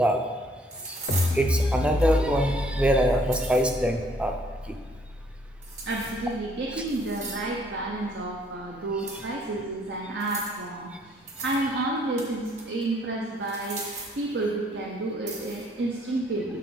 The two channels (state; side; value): normal; both; correlation 0.64